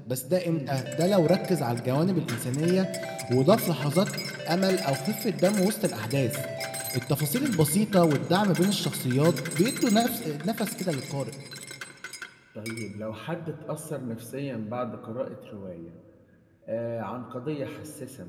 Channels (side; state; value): both; identical; correlation 1.00